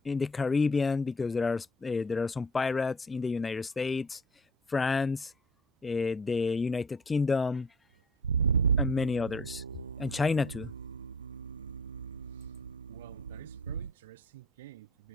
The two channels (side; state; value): both; normal; correlation 0.50